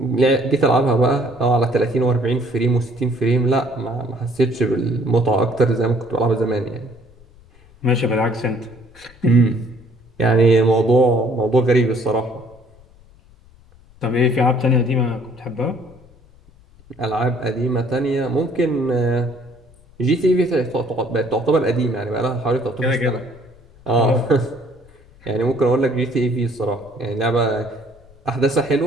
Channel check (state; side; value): noise; left; rumble, 27 dB below the sound